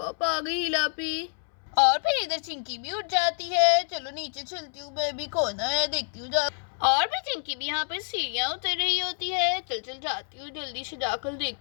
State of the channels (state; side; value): silent; right; 60 dB below the other